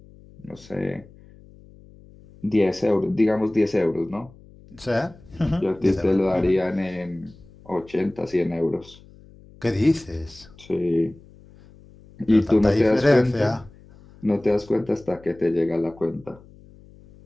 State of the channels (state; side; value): noise; left; hum, 23 dB below the sound